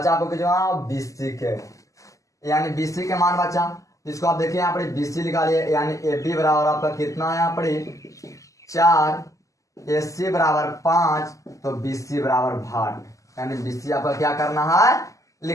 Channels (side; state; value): right; late; 0.16 ms